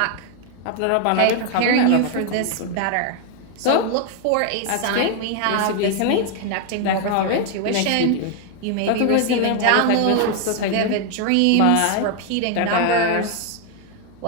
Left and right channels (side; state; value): both; different; correlation 0.00